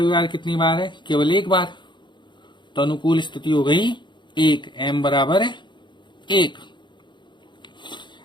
कितनी बार है? केवल एक बार। तो अनुकूल स्थिति हो गई 1, m बराबर है 1।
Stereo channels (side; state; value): right; late; 0.22 ms